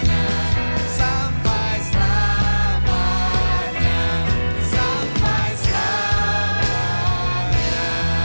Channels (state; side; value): inverted; both; correlation -1.00